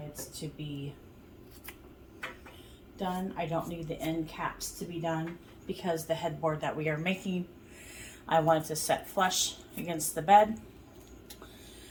to be done. I don't need the end caps to be done because the headboard that we are making, I wanted to set flush against the bed.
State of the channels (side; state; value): both; identical; correlation 1.00